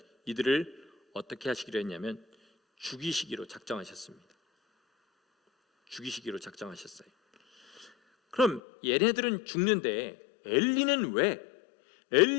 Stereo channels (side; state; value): right; drops out; at 8.6 s